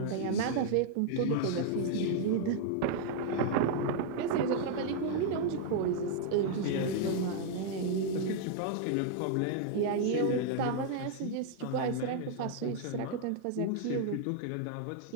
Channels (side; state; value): both; different; correlation 0.00